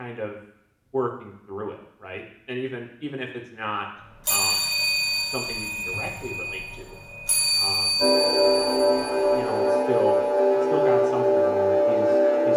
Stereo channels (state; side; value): identical; both; correlation 1.00